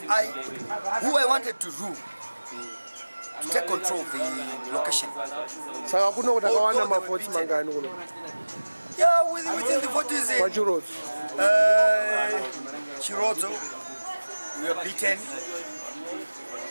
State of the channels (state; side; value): inverted; both; correlation -1.00